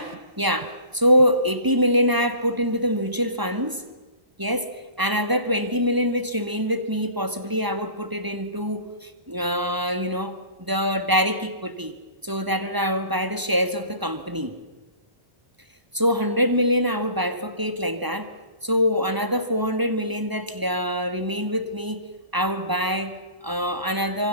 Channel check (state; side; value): late; left; 1.0 ms